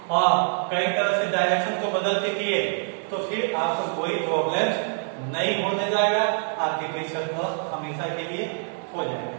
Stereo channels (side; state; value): left; silent; digital silence